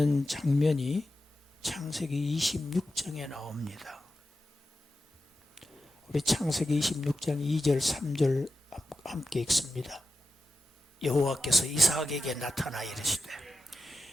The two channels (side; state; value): both; normal; correlation 0.91